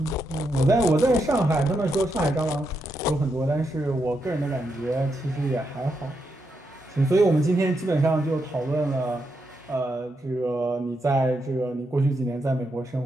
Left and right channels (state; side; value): normal; both; correlation 0.82